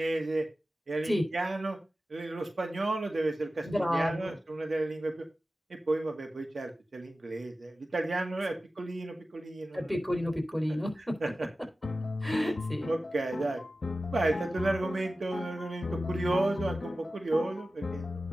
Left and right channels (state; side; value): normal; both; correlation 0.95